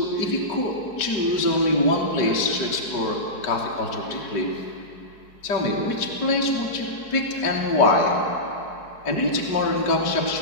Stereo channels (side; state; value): right; late; 4.7 ms